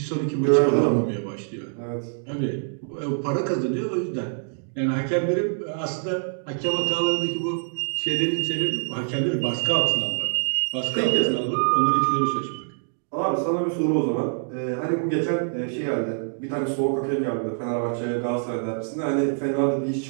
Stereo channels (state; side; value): silent; left; digital silence